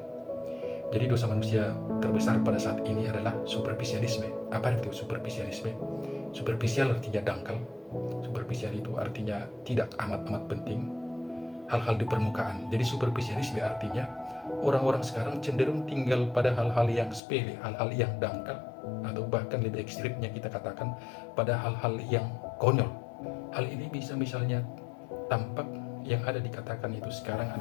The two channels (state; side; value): drops out; right; at 17.2 s